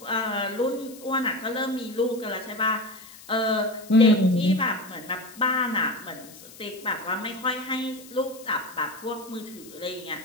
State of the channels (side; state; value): left; noise; hiss, 19 dB below the sound